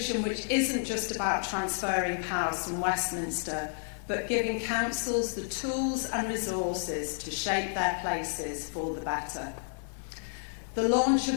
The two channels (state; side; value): silent; right; 57 dB below the other